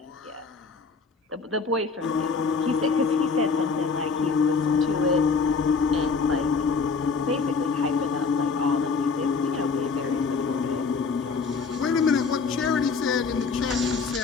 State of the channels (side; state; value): right; quieter; 4.8 dB